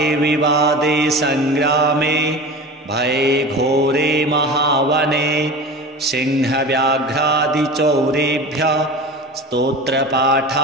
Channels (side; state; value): both; normal; correlation 0.33